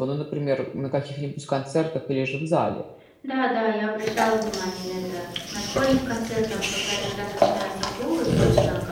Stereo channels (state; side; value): identical; both; correlation 1.00